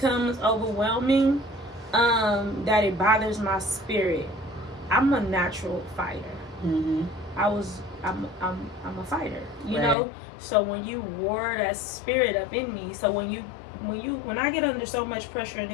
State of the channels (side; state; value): right; drops out; at 10.0 s